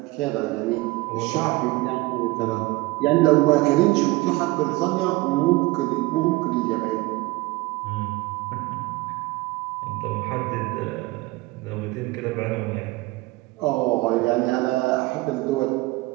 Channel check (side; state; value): left; quieter; 21.3 dB